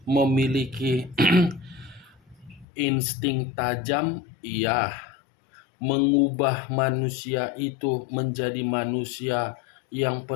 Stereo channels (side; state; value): right; drops out; at 2.7 s